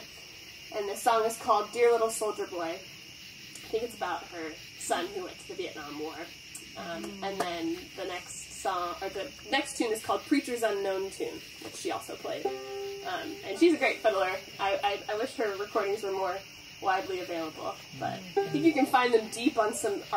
And this song is called Dear Little Soldier Boy. I think it's about her son who went to the Vietnam War. And then the next tune is called Preacher's Unknown Tune, which she also played. And she's a great fiddler. I wish her recordings were more widely available, but I think you can find them deep on some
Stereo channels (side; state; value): both; identical; correlation 1.00